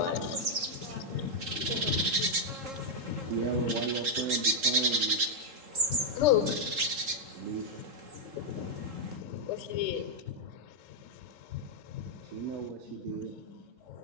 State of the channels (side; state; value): left; late; 3.7 ms